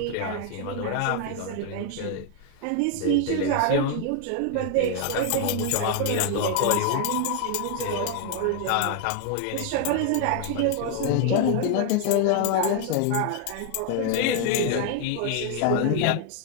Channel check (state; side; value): different; both; correlation 0.00